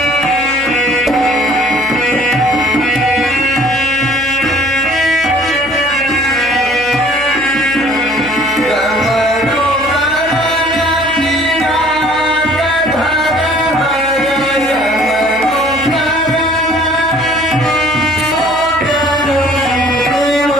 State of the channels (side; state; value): right; noise; hum, 18 dB below the sound